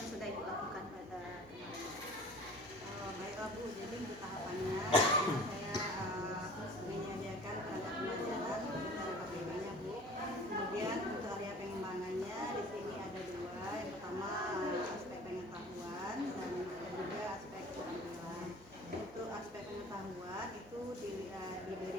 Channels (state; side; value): noise; right; hum, 24 dB below the sound